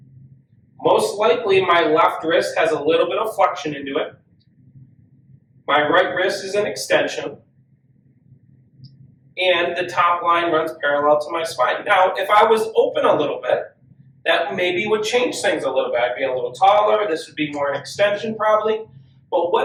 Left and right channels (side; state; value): both; identical; correlation 1.00